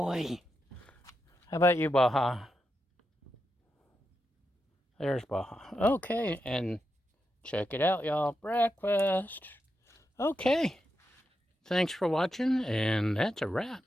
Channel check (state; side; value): normal; both; correlation 0.86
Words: How about you, Baja? There's Baja. Okay, and check it out, y'all. Breakfast. Okay. Thanks for watching, and that's a wrap.